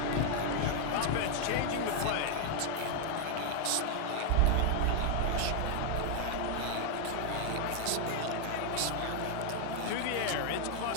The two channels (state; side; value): different; both; correlation 0.00